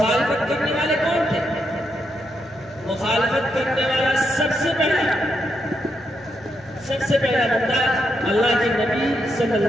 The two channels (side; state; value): both; normal; correlation 0.81